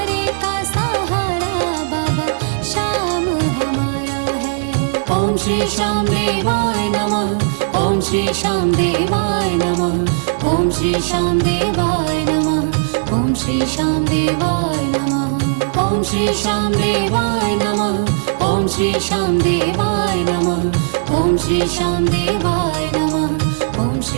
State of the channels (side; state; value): left; silent; 63 dB below the other